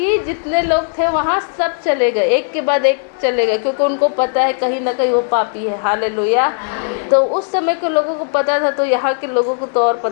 जितने लोग थे वहाँ सब चले गए, एक के बाद एक चले गए, क्योंकि उनको पता है कहीं ना कहीं वो पापी है। हालेलुया। तो उस समय के लोगों को पता था, तो यहाँ के लोगों को तो और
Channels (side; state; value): right; silent; 60 dB below the other